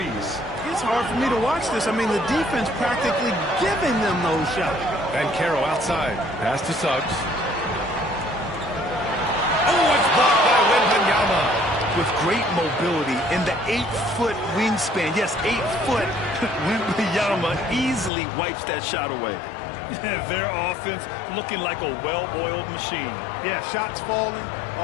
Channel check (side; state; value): right; drops out; at 18.1 s